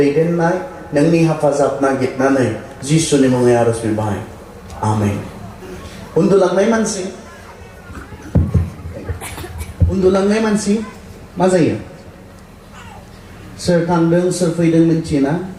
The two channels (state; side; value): identical; both; correlation 1.00